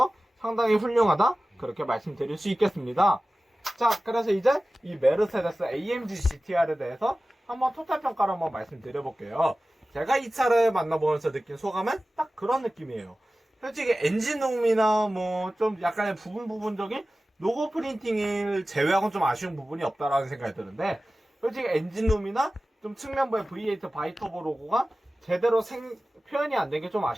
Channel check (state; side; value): normal; both; correlation 0.96